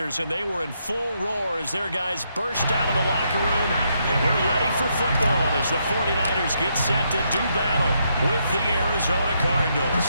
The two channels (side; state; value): both; inverted; correlation -0.77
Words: and they were in full roar as their guys burst out of the locker room. And we're ready for football as the 49ers get set to do battle with the Arizona Cardinals.